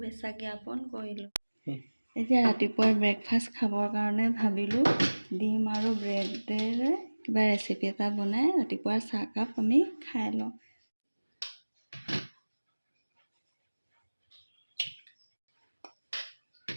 জ্ঞাপন কৰিলোঁ। এতিয়া ৰাতিপুৱাৰ ব্ৰেকফাষ্ট খাবৰ কাৰণে ভাবিলোঁ ডিম আৰু ব্ৰেডেৰে কিবা ৰেচিপি এটা বনাই ৰাতিপুৱাৰ চাহকাপ আমি খাই লওঁ।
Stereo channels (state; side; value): inverted; both; correlation -1.00